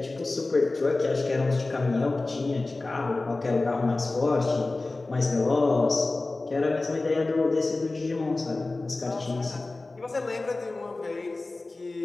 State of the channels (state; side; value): quieter; right; 3.2 dB